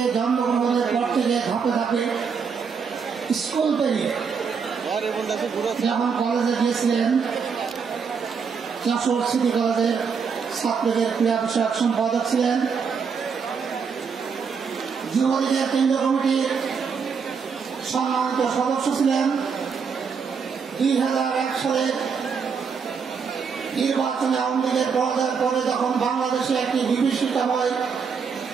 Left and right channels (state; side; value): quieter; left; 6.0 dB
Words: জন্মগ্রহণের পর থেকে ধাপে ধাপে স্কুল পেরিয়ে যখন কলেজে গিয়েছিলেন, যশোর সিটি কলেজের ছাত্রদের ক্রীড়া বিষয়ক সম্পাদক ছিলেন, যুবলীগের কেন্দ্রীয় কমিটির সম্মানিত সদস্য ছিলেন। 2001 সালে নির্বাচনে আওয়ামী লীগের পরাজয়ের পরে যখন বাংলাদেশে একটি বিভীষিকাময়